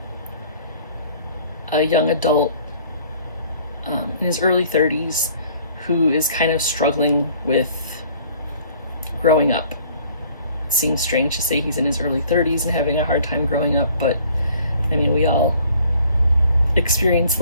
a young adult in his early 30s who is kind of struggling with growing up. It seems strange to say he's in his early 30s and having a hard time growing up, but I mean, we all experience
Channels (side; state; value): both; inverted; correlation -0.55